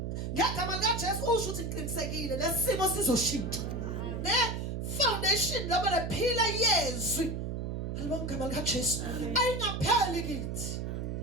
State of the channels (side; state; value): right; noise; hum, 3 dB below the sound